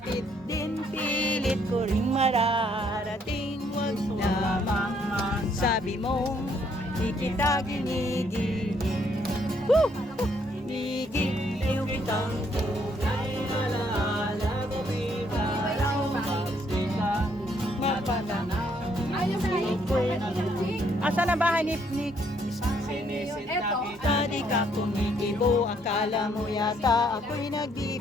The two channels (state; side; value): normal; both; correlation 0.69